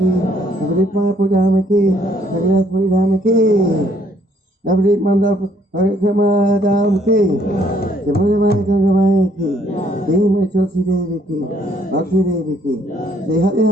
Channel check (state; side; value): normal; both; correlation 0.66